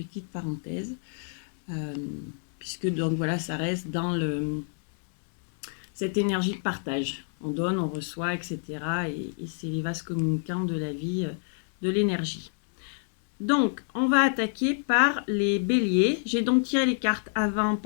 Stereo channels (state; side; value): silent; right; digital silence